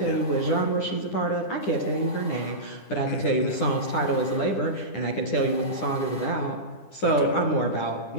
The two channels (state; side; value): late; right; 10 ms